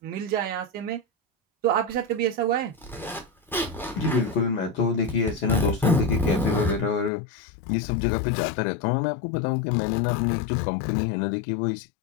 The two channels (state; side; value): drops out; right; at 7.1 s